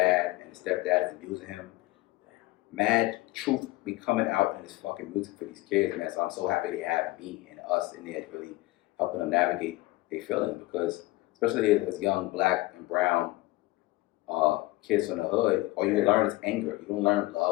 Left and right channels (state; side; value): quieter; right; 20.1 dB